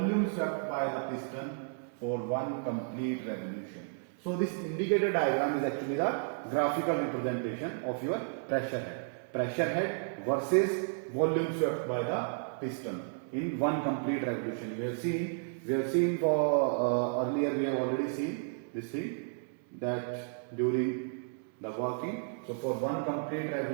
swept by the piston for one complete revolution. So this indicator diagram is actually the graphical representation of your pressure head. Pressure head versus volume swept by the piston in one complete revolution. We have seen for earlier we have already seen this thing that during the working. So for one complete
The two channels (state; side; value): silent; left; digital silence